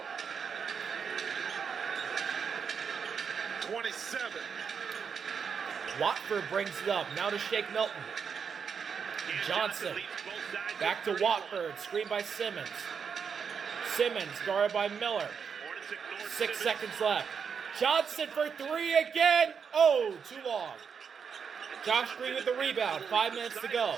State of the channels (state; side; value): quieter; left; 6.5 dB